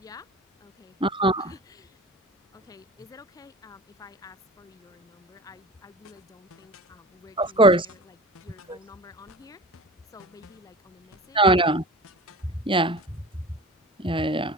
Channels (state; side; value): normal; both; correlation 0.37